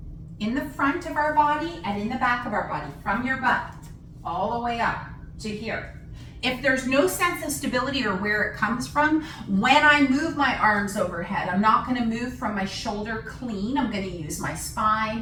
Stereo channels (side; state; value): both; identical; correlation 1.00